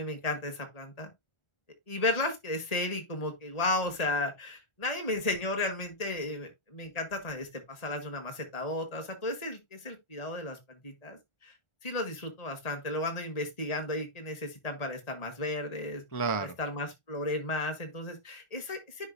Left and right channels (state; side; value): late; right; 1.4 ms